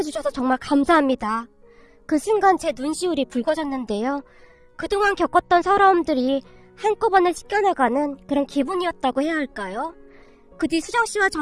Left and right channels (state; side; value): identical; both; correlation 1.00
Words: 정말 감사합니다. 그 순간 제 눈시울이 붉어졌는데요. 그동안 겪었던 서러움들이 한꺼번에 씻겨나가는 그런 기분이었다고 해야 할까요? 그 뒤 수정씨와